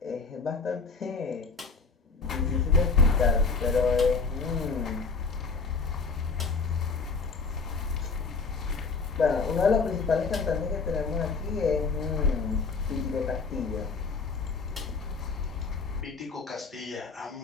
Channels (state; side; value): quieter; right; 4.6 dB